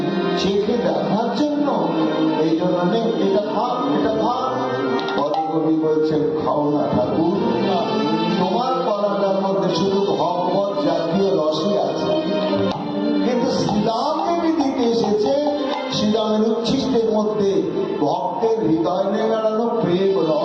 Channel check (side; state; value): both; identical; correlation 1.00